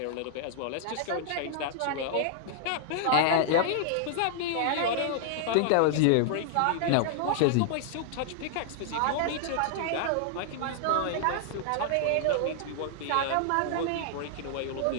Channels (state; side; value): different; both; correlation -0.01